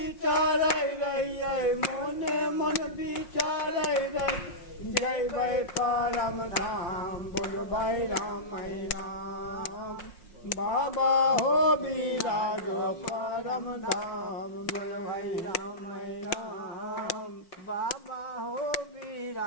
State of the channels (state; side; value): late; right; 5.6 ms